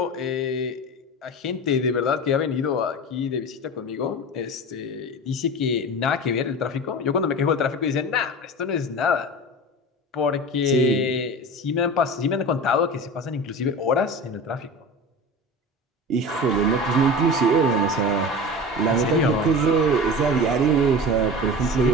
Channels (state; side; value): normal; both; correlation 0.32